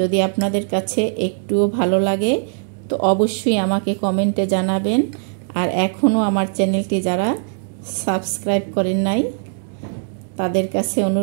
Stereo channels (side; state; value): left; silent; digital silence